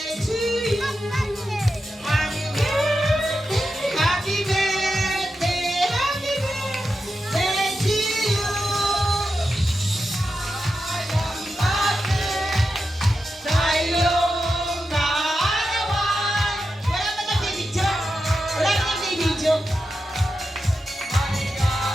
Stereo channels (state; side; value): normal; both; correlation 0.89